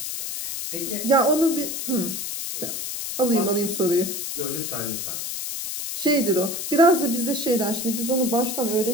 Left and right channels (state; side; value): noise; left; hiss, 5 dB below the sound